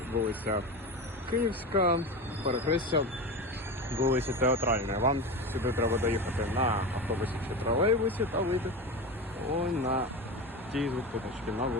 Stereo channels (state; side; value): normal; both; correlation 0.25